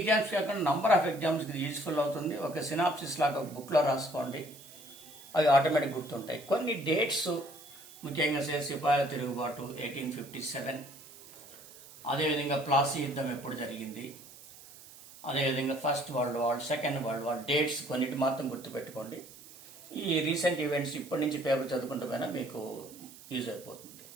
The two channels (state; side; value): noise; right; hiss, 19 dB below the sound